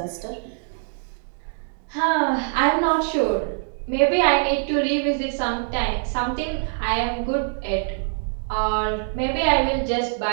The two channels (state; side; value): silent; left; digital silence